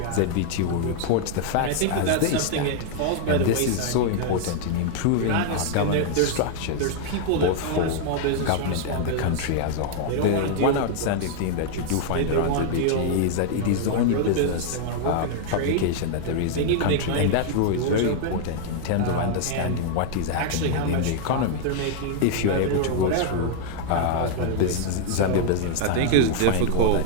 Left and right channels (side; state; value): both; different; correlation 0.00